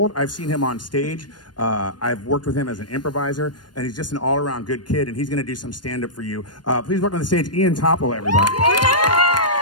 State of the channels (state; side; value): late; right; 0.70 ms